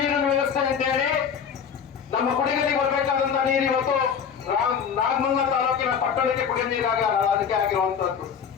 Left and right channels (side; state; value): right; quieter; 7.2 dB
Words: ವ್ಯವಸ್ಥೆ ಅಂತ ಹೇಳಿ ನಮ್ಮ ಕುಡಿಗಲಿಗೆ ಬರಬೇಕಾದಂತ ನೀರು ಇವತ್ತು ನಾಗಮಂಗಲ ತಾಲೂಕಿನ ಪಟ್ಟಣಕ್ಕೆ ಕುಡಿಯೋ ನೀರಾಗಿ ಅದಕ್ಕೆ ಆಗಿರುವಂತದ್ದು.